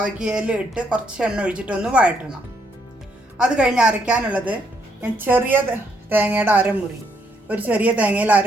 ഇട്ട് കുറച്ച് എണ്ണ ഒഴിച്ചിട്ടൊന്ന് വഴറ്റണം. അത് കഴിഞ്ഞ് അരയ്ക്കാനുള്ളത് ഞാൻ ചെറിയ തേങ്ങയുടെ അരമുറി, ഒരു ചെറിയ തേങ്ങയിൽ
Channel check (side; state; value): both; normal; correlation 0.73